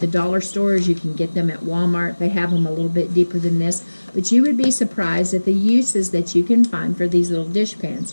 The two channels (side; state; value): both; inverted; correlation -1.00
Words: dollar stores. You can get them at Walmart. They have them a little bit deeper than this. But you would be surprised at the uses that you can find for these little dish pans.